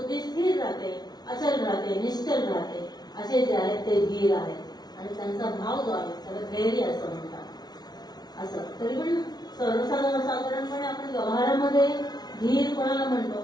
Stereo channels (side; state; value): right; late; 0.19 ms